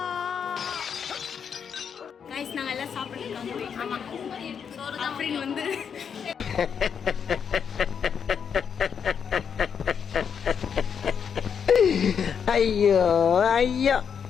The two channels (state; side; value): quieter; right; 7.2 dB